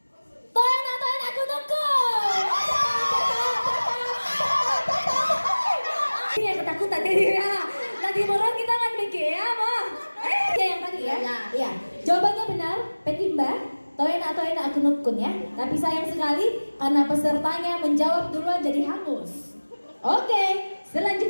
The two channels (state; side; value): inverted; both; correlation -1.00